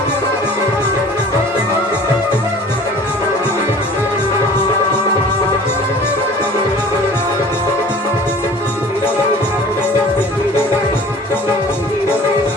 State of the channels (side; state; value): both; normal; correlation 0.46